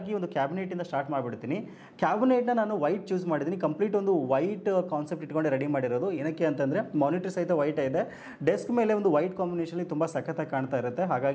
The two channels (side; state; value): both; identical; correlation 1.00